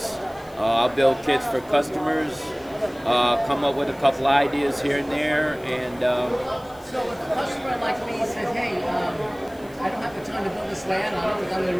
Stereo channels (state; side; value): noise; left; hiss, 26 dB below the sound